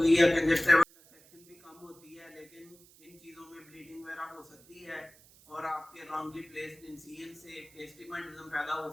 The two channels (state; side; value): noise; right; hiss, 25 dB below the sound